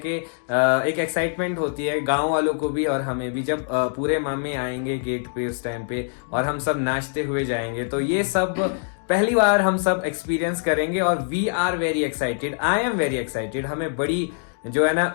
एक एक्साइटमेंट होती है गांव वालों को भी और हमें भी, जब पूरे मामे आएंगे गेट पे उस टाइम पे और हम सब नाचते हुए जाएंगे। तो ये सब पहली बार हम सब एक्सपीरियंस करेंगे और we are very excited. I am very excited. हमें बड़ी जो है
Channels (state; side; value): silent; right; digital silence